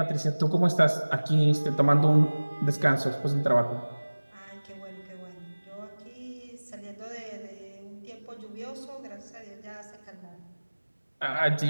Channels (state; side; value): inverted; both; correlation -1.00